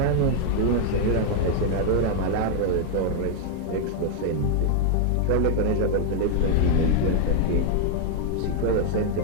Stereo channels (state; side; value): different; both; correlation 0.00